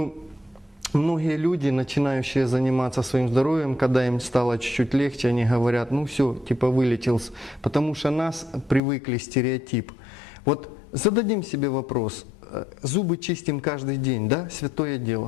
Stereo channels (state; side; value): drops out; right; at 8.8 s